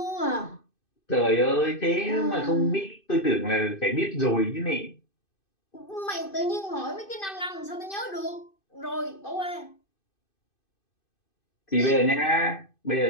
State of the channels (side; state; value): right; late; 2.5 ms